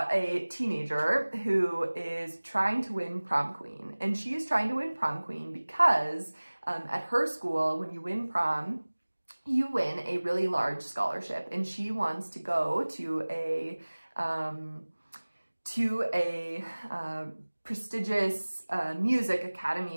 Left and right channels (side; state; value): both; inverted; correlation -1.00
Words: teenager who is trying to win prom queen. And she is trying to win prom queen because at her school, when you win prom, you win a really large scholarship, and she wants to go to a prestigious music